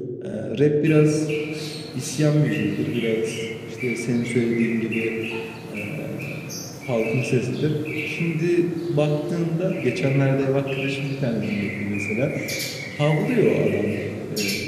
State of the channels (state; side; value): identical; both; correlation 1.00